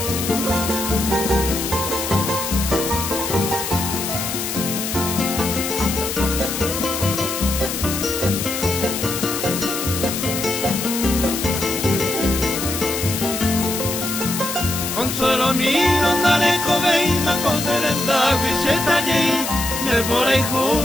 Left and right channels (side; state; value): left; noise; hiss, 4 dB below the sound